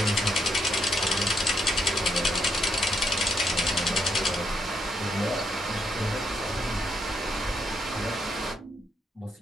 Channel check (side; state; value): both; normal; correlation 0.77